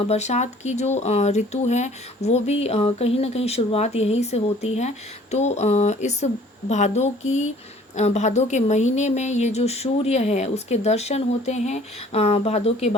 की जो ऋतु है वो भी कहीं ना कहीं शुरुआत यहीं से होती है। तो इस भादों के महीने में ये जो सूर्य है उसके दर्शन होते हैं, भादों के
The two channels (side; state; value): both; normal; correlation 0.54